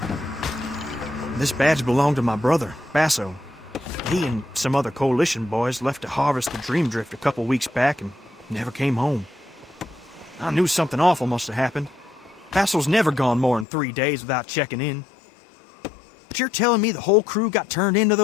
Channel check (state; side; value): drops out; right; at 13.7 s